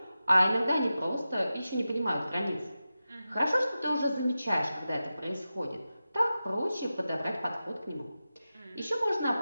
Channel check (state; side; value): inverted; both; correlation -0.93